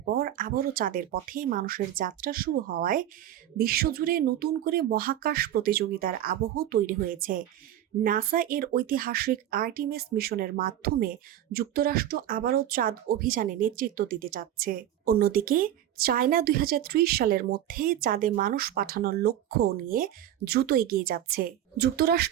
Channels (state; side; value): quieter; left; 11.7 dB